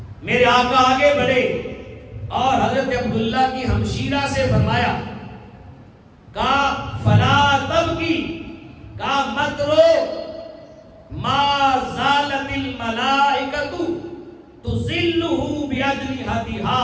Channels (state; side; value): identical; both; correlation 1.00